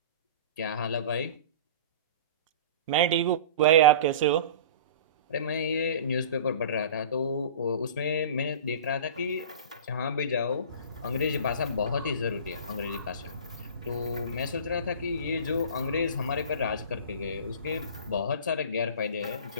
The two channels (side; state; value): both; inverted; correlation -0.37